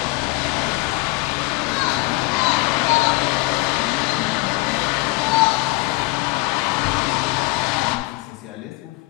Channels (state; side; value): quieter; right; 23.3 dB